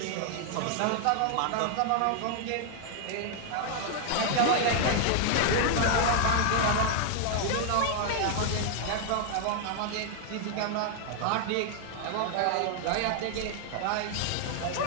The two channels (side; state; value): both; different; correlation 0.00